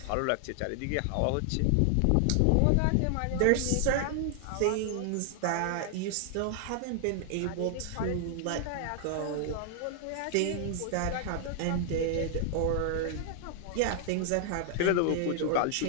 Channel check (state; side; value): different; both; correlation 0.00